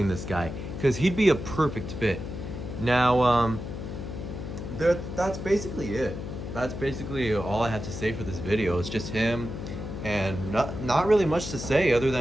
this guy because he'd be a perfect fit. Now, that's basically it. That's basically all I have to say for this video. It's just him, and not really much to say other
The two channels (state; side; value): noise; left; hum, 7 dB below the sound